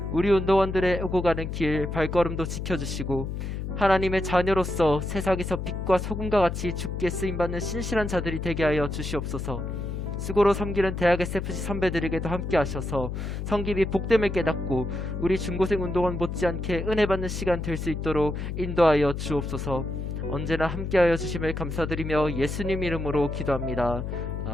우리 운동원들의 오고 가는 길 발걸음도 지켜주시고 하나님의 자녀로서 세상에서 빛과 소금과 같이 주께 쓰임받는 신실한 자들이 되게 하여 주시옵소서. 수고로 섬기는 대학 SFC 선배들에게도 함께 하셔서 성김이 복됨을 깨닫고 우리 중고생 운동원 못지않게 은혜받는 시간 될 수 있도록 인도하여 주옵소서. 언제나 함께하여 주심을 감사드리며 예수님 이름으로 기도합니다.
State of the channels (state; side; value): noise; left; hum, 5 dB below the sound